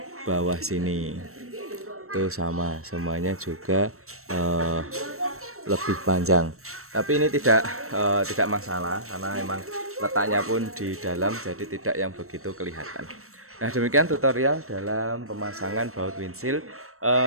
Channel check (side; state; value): left; late; 0.63 ms